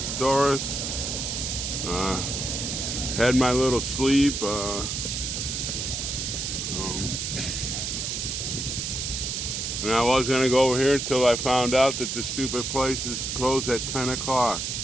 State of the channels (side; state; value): right; noise; hiss, 3 dB below the sound